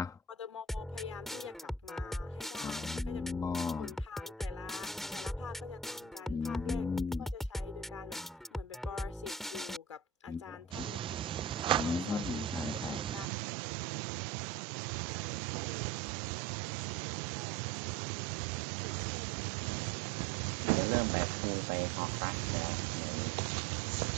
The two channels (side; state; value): left; drops out; at 13.2 s